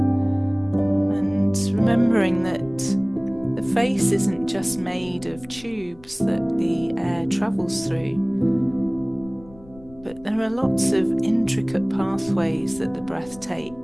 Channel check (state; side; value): noise; left; rumble, 22 dB below the sound